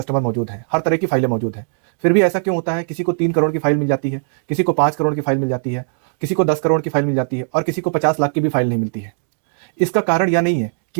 मौजूद हैं, हर तरह की फाइलें मौजूद हैं। फिर भी ऐसा क्यों होता है, किसी को 3 करोड़ की फाइल मिल जाती है, किसी को 5 करोड़ की फाइल मिल जाती है, किसी को 10 करोड़ की फाइल मिल जाती है, और किसी को 50 लाख की भी फाइल नहीं मिलती है? इसका कारण यह नहीं है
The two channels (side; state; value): left; silent; digital silence